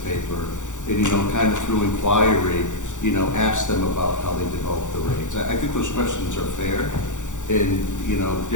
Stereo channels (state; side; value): late; right; 0.86 ms